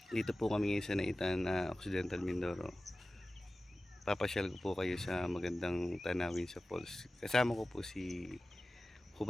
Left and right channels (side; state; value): both; normal; correlation 0.96